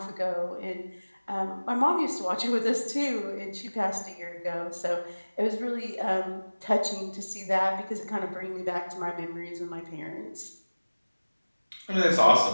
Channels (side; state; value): both; inverted; correlation -1.00